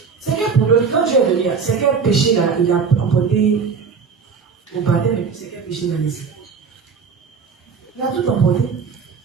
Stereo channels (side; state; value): left; quieter; 5.7 dB